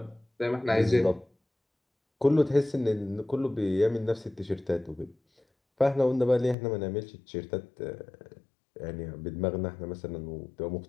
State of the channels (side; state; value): right; drops out; at 6.6 s